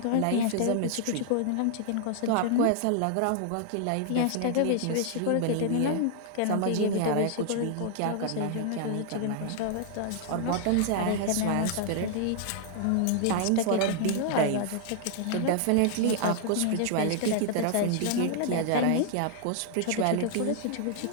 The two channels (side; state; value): both; different; correlation 0.00